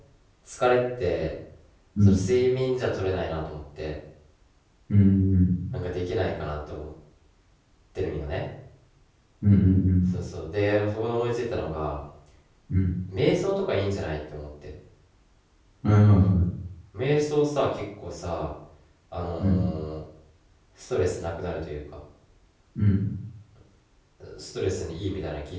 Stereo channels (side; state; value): both; identical; correlation 1.00